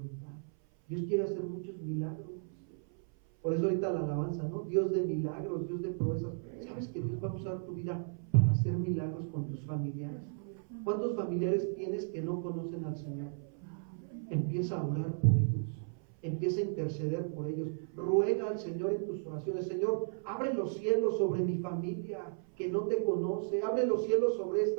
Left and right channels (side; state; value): left; silent; 55 dB below the other